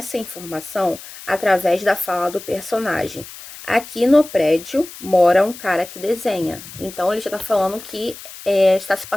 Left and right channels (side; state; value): left; noise; hiss, 15 dB below the sound